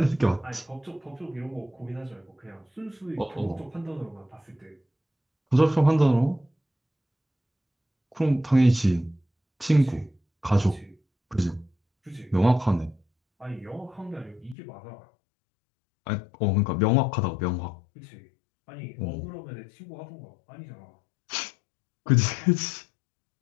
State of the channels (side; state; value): right; drops out; at 14.6 s